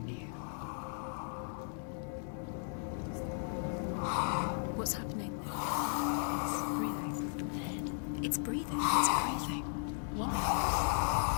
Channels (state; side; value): silent; right; 54 dB below the other